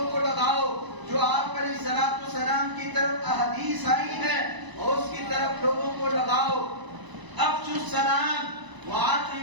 کو لگاؤ، جو آپ علیہ الصلوۃ والسلام کی طرف احادیث آئی ہے اس کی طرف لوگوں کو لگاؤ۔ افشوا السلام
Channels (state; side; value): late; left; 1.0 ms